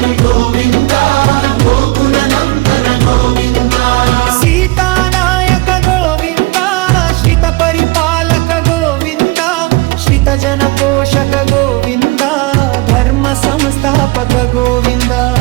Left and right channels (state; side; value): quieter; left; 22.8 dB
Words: గోవింద గోకుల నందన గోవింద సీతానాయక గోవింద శ్రిత పరిపాలక గోవింద శ్రిత జన పోషక గోవింద ధర్మ సంస్థాపక గోవింద